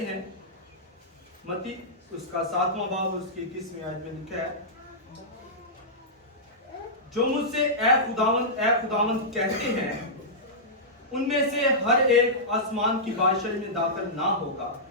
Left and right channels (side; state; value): both; normal; correlation -0.14